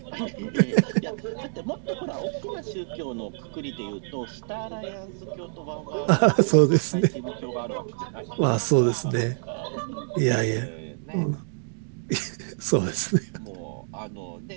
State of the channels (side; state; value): left; silent; digital silence